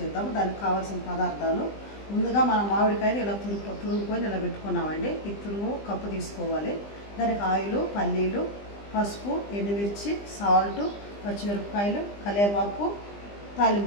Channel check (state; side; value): late; right; 20 ms